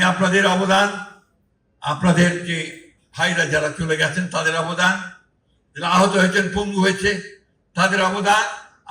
আপনাদের অবদান, আপনাদের যে ভাইরা যারা চলে গেছেন তাদের অবদান, যারা আহত হয়েছেন, পঙ্গু হয়েছে, তাদের অবদান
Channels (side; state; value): both; identical; correlation 1.00